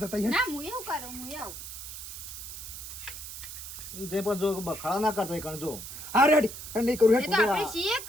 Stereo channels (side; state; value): right; noise; hiss, 10 dB below the sound